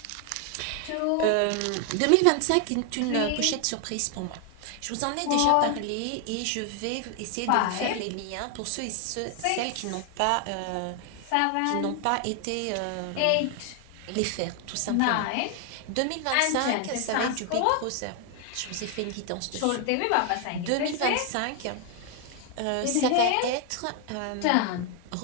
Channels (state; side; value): different; both; correlation 0.00